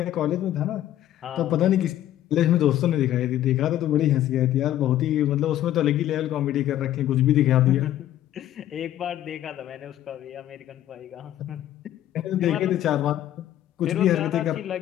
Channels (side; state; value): right; quieter; 12.5 dB